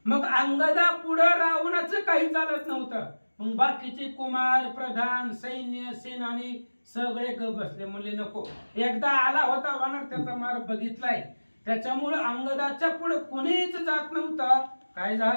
मग अंगदा पुढे रावणाचं काही चालत नव्हतं. मग बाकीचे कुमार प्रधान सैन्य सेनानी सगळे ग बसले, म्हणले नको. एकदा आला होता वानर, त्याचा मार बघितलाय, त्याच्यामुळे अंगदाच्या पुढे कोणीच जात नव्हतं. काय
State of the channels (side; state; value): both; inverted; correlation -1.00